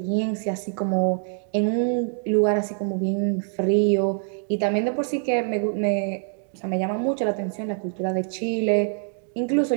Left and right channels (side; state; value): left; silent; 62 dB below the other